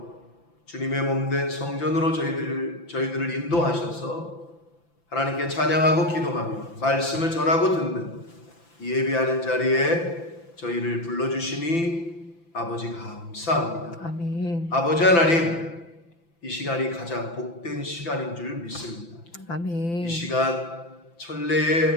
주님의 몸된 성전으로 저희들을 인도하셔서 하나님께 찬양하고 기도하며 말씀을 전하고 듣는 이 예배하는 자리에 저희를 불러주시니 아버지 감사합니다. 아멘. 아버지 하나님, 이 시간이 가장 복된 시간인 줄 믿습니다. 아멘. 이 시간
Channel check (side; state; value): right; late; 5.9 ms